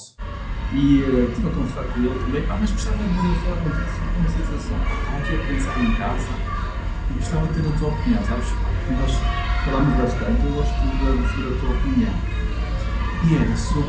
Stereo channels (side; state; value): both; identical; correlation 1.00